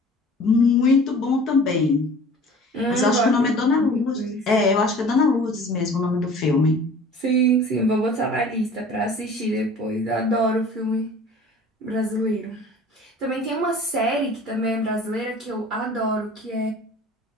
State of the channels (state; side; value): normal; both; correlation 0.45